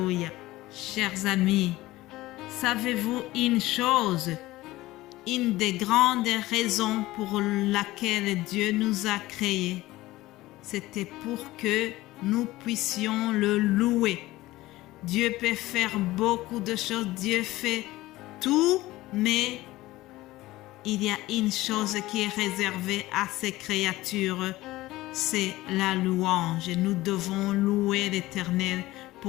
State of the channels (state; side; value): quieter; right; 17.8 dB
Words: Chers amis, savez-vous une chose? Une des grandes raisons pour laquelle Dieu nous a créés, c'était pour que nous puissions le louer. Dieu peut faire beaucoup de choses, Dieu fait tout, mais il y a une chose qui est réservée à ses créatures, c'est la louange. Nous devons louer l'Éternel